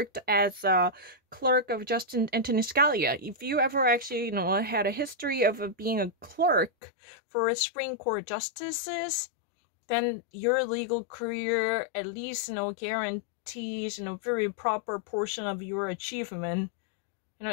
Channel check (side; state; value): right; drops out; at 6.7 s